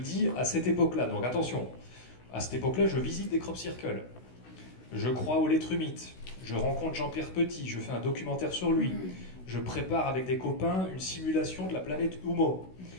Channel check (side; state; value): right; late; 16 ms